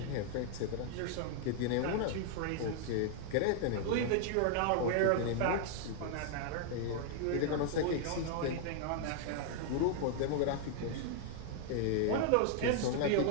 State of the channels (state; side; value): different; both; correlation 0.00